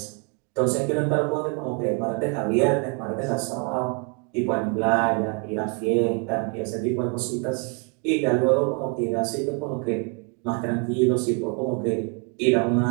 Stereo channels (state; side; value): quieter; left; 36.2 dB